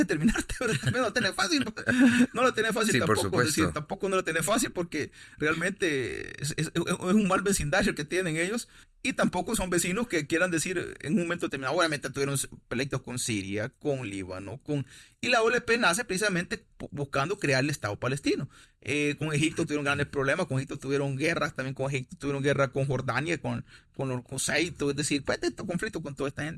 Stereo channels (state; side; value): identical; both; correlation 1.00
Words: pero también no lo tenés fácil. No lo tenés fácil Sí, por tampoco. Es decir, supuesto. tampoco no lo tenés fácil porque realmente es un mal vecindario el que tienen ellos, y tampoco son vecinos que quieran decir en un momento determinado. Obviamente tuvieron pleitos con Siria, con Líbano, y la OLP nace precisamente buscando crear el Estado palestino. Con Egipto tuvieron grandes problemas, con Egipto tuvieron guerras, también con Egipto tuvieron guerra con Jordania, con Saito, es decir, pues este conflicto con toda esta